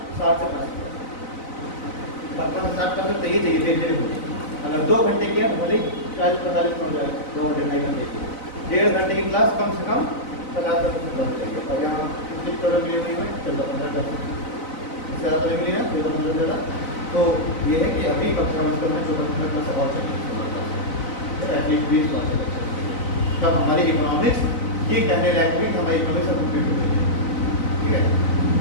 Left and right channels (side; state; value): right; late; 4.0 ms